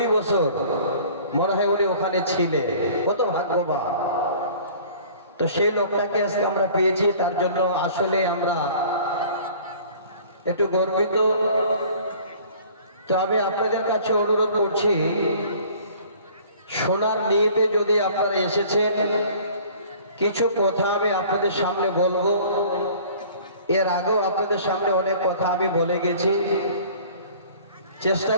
বছর মনে হয় উনি ওখানে ছিলেন কত ভাগ্যবান তো সেই লোকটাকে আজকে আমরা পেয়েছি তার জন্য আসলে আমরা একটু গর্বিত তো আমি আপনাদের কাছে অনুরোধ করছি শোনার নিয়তে যদি আপনারা এসেছেন কিছু কথা আমি আপনাদের সামনে বলবো এর আগেও আপনাদের সামনে অনেক কথা আমি বলে গেছি চেষ্টা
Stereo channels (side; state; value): both; inverted; correlation -0.49